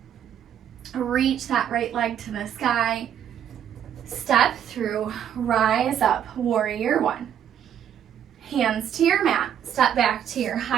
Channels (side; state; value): left; quieter; 9.5 dB